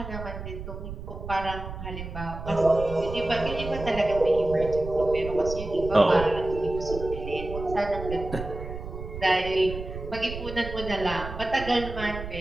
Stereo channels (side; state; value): right; noise; rumble, 9 dB below the sound